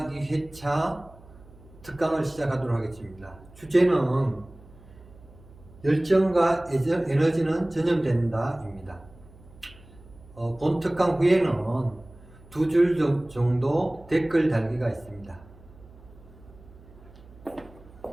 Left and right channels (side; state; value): right; noise; hum, 23 dB below the sound